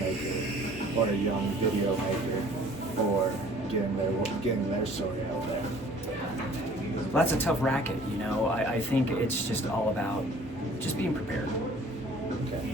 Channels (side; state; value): both; normal; correlation 0.52